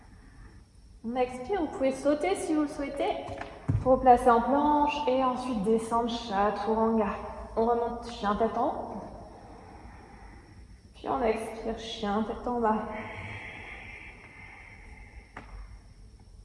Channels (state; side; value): identical; both; correlation 1.00